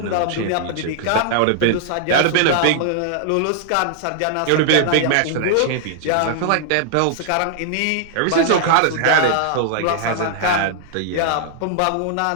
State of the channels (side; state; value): both; different; correlation -0.01